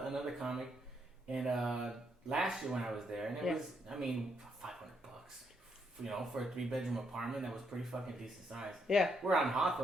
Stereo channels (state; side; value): normal; both; correlation 0.76